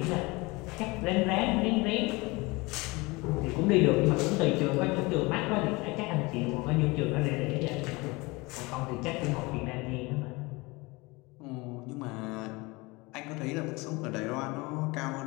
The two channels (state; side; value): quieter; right; 24.4 dB